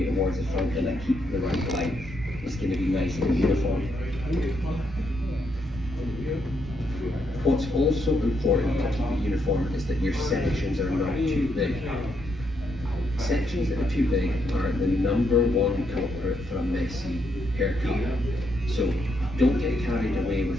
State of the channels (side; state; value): both; normal; correlation 0.78